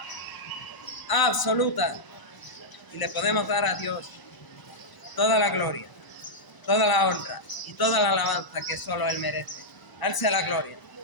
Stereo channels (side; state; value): right; late; 1.0 ms